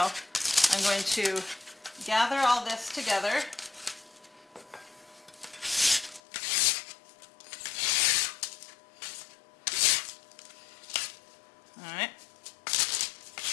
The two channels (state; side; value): drops out; right; at 6.2 s